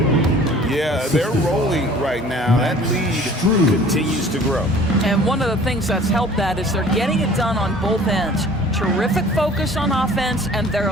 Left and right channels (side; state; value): both; normal; correlation 0.49